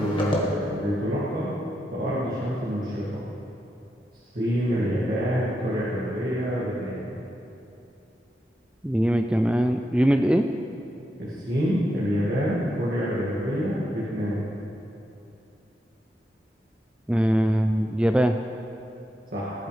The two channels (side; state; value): both; normal; correlation 0.84